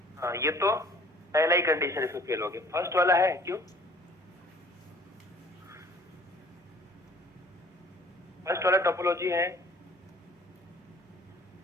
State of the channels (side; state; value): both; normal; correlation 0.52